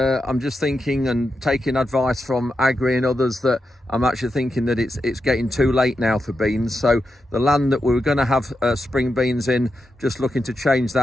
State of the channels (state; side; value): normal; both; correlation 0.87